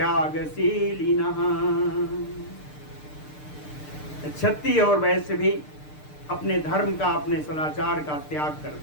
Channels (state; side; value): late; right; 6.7 ms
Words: क्षत्रिय और वैश्य भी अपने धर्म का, अपने सदाचार का त्याग कर